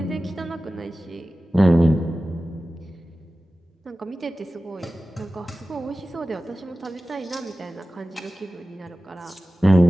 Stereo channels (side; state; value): both; normal; correlation 0.96